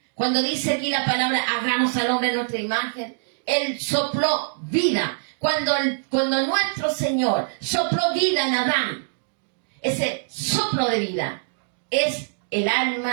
Cuando dice aquí la palabra, hagamos al hombre en nuestra imagen, Él sopló vida. Cuando nuestro Señor sopló vida en Adán, ese soplo de vida es el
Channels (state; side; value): silent; left; digital silence